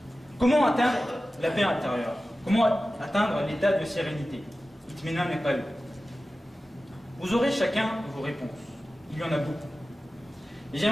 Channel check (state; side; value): normal; both; correlation 0.95